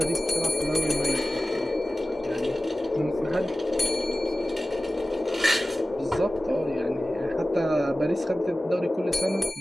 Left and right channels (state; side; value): normal; both; correlation 0.96